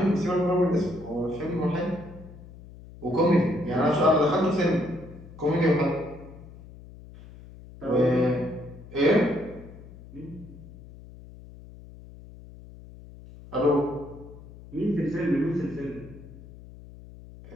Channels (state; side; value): noise; left; hum, 18 dB below the sound